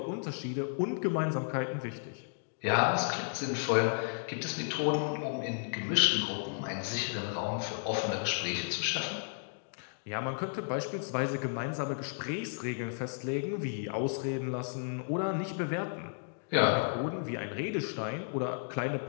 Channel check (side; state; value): right; silent; digital silence